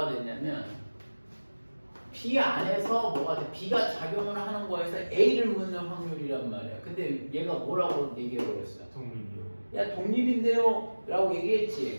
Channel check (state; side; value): inverted; both; correlation -1.00